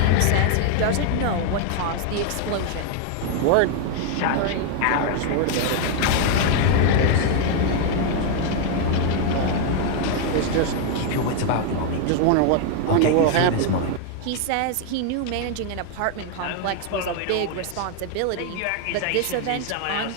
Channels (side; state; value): both; different; correlation 0.00